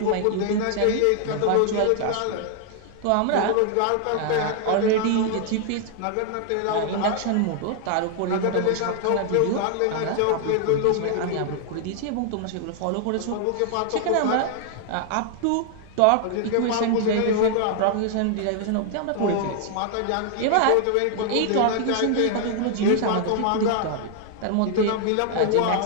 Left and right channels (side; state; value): both; different; correlation 0.00